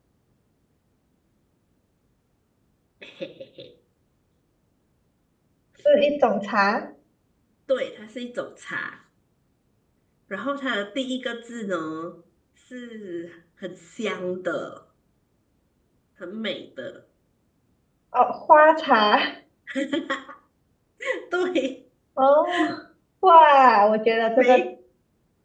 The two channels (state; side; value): identical; both; correlation 1.00